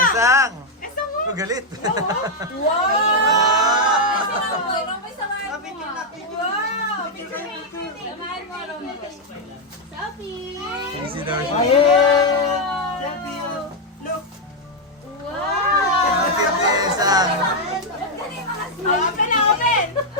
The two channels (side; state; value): both; normal; correlation 0.00